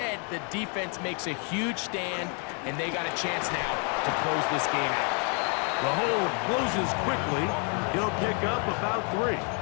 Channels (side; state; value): right; quieter; 38.5 dB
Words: the defense makes a huge stand, and they got a chance now to close this game out. The hole closes quickly. He'll pick up about 3.